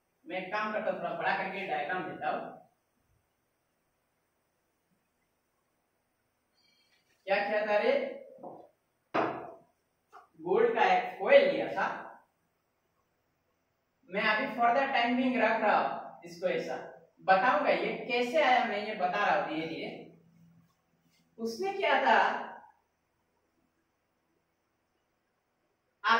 मैं एक काम करता हूं, थोड़ा बड़ा करके डायग्राम देता हूं। क्या किया था रे? गोल्ड का एक फॉइल लिया था। मैं अभी फर्दर टाइम बिंग रख रहा हूं इसको, ऐसा बताऊंगा ये कैसे आया, मैं ये बता रहा हूं धीरे धीरे। उसने क्या था,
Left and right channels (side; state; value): both; identical; correlation 1.00